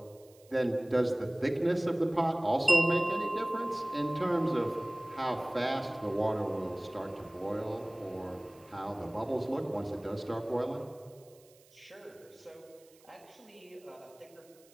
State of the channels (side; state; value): right; noise; hiss, 28 dB below the sound